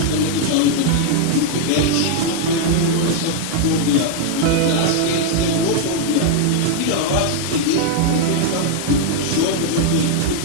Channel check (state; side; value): different; both; correlation 0.00